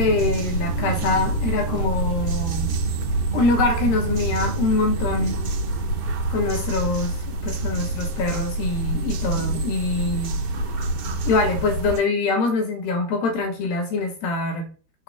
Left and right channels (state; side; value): late; right; 13 ms